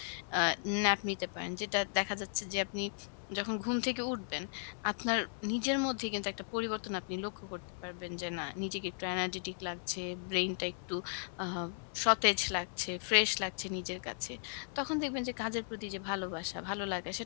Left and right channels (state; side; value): silent; right; 54 dB below the other